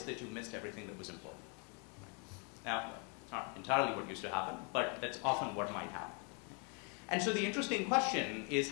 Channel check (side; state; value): right; quieter; 36.3 dB